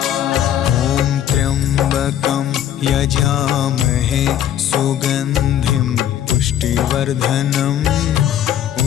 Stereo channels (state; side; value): quieter; right; 10.8 dB